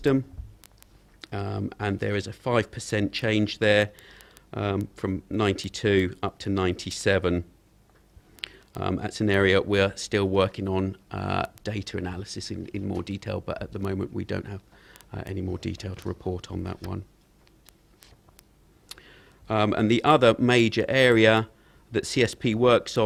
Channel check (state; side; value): identical; both; correlation 1.00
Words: and there is a 5% change there, from 92 up to 97. That's an area we're still working on data analysis in more detail, but at the moment we don't have any more detail to report on that one. And the other major area that CSP works